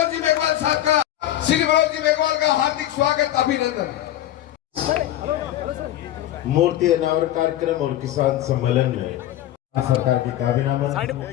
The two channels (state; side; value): quieter; right; 13.0 dB